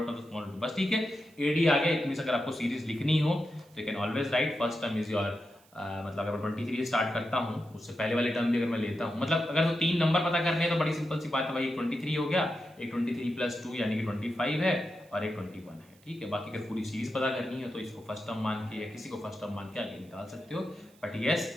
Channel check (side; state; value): right; noise; hiss, 29 dB below the sound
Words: of the small two, बस ठीक है। एडी आ गया, इट मींस अगर आपको सीरीज लिखनी हो तो you can always right first term is your मतलब अगर मैं 23 स्टार्ट करता हूँ, उससे पहले वाली टर्म भी अगर मैं लेता हूँ, मतलब अगर तो 3 नंबर पता करने हैं तो बड़ी सिंपल सी बात है भाई, एक 23 हो गया, एक 23 प्लस 2 यानी कि 25 है, और एक 21 है, ठीक है। बाकी अगर पूरी सीरीज पता करनी है तो इसको फर्स्ट टर्म मान के या किसी को फर्स्ट टर्म मान के आगे निकाल सकते हो। But yes,